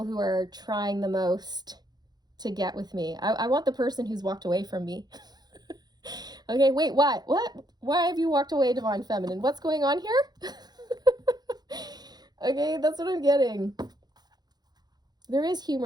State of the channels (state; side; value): late; left; 0.20 ms